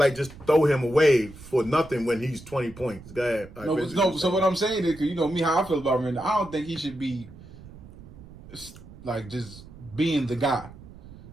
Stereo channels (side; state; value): right; noise; rumble, 18 dB below the sound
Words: just throw him away for nothing when he's 20 points. Go ahead. No. So what I'm saying is, 'cause you know me how I feel about Randle. I don't think he should be like just being the guy.